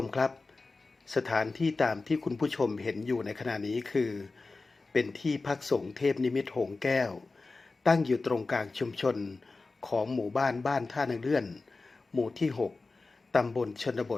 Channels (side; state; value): right; quieter; 3.7 dB